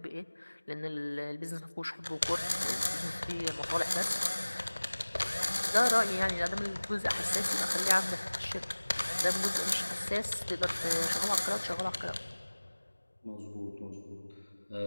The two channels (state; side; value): inverted; both; correlation -1.00